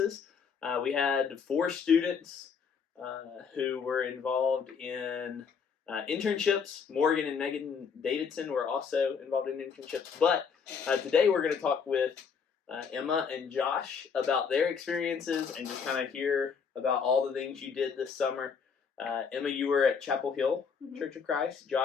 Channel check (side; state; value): right; quieter; 6.2 dB